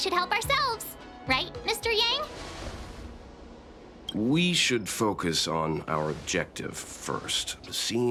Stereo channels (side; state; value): both; identical; correlation 1.00